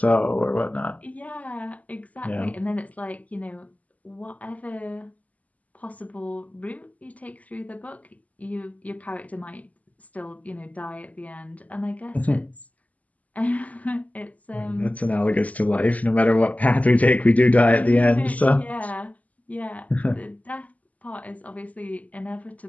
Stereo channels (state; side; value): late; right; 0.073 ms